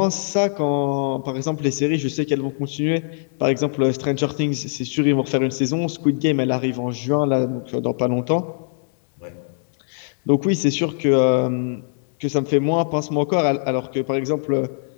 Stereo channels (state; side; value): silent; right; digital silence